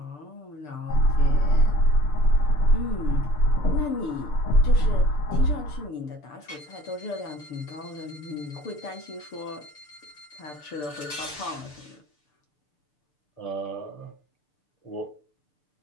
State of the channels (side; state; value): right; late; 6.8 ms